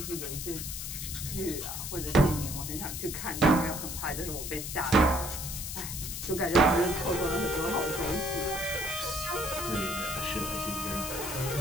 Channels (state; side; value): noise; left; hiss, 6 dB below the sound